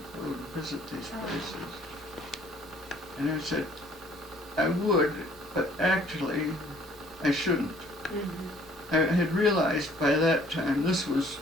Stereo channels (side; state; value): both; normal; correlation 0.58